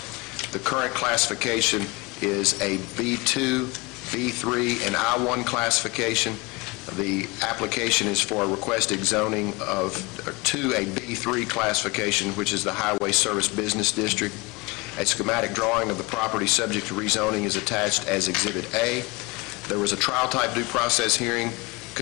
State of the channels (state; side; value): quieter; right; 25.6 dB